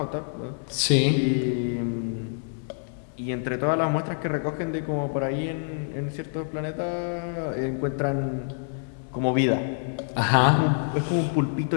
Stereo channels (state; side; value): silent; right; 60 dB below the other